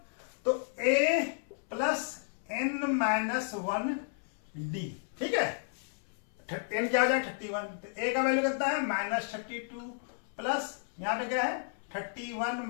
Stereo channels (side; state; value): right; silent; 56 dB below the other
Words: तो a plus n minus 1d, ठीक है n क्या हो जाएगा 31, तो a का वैल्यू कितना है माइनस 32 प्लस यहाँ पे क्या है 31